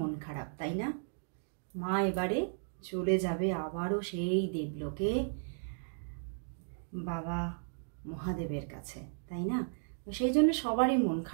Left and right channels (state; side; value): silent; left; digital silence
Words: খারাপ, তাই না? মা এবারে চলে যাবে আবারও সেই দেবলোকে, বাবা মহাদেবের কাছে, তাই না? সেই জন্য সবারই মন